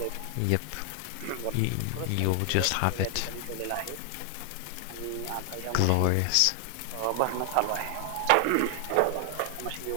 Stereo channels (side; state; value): both; different; correlation 0.00